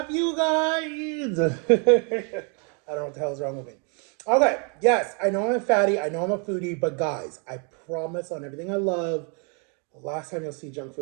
you guys? I don't know what the hell is wrong with me. Okay, yes, I know I'm a fatty, I know I'm a foodie, but guys, I promise on everything I love, the last time you'll see junk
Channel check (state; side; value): quieter; left; 37.0 dB